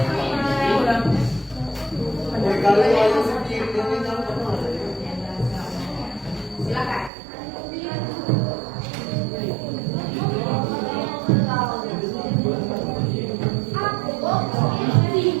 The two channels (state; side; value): drops out; left; at 7.1 s